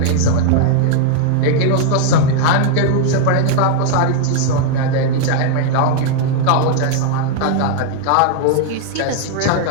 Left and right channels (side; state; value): both; different; correlation 0.00